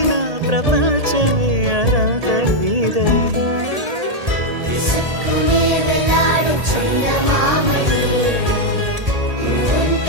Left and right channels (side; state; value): left; late; 1.8 ms